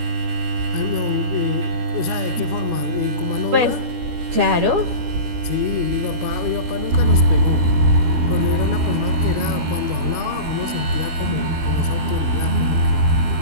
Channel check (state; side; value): late; left; 12 ms